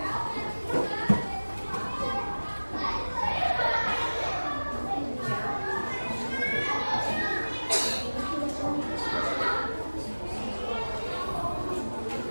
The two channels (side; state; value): both; inverted; correlation -1.00